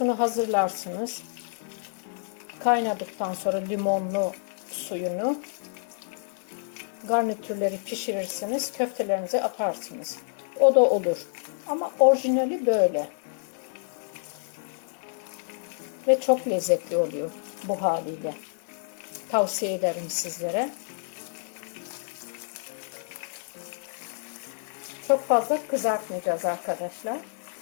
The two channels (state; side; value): silent; right; 58 dB below the other